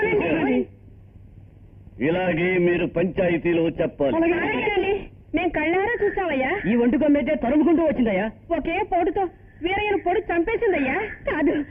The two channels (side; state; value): both; identical; correlation 1.00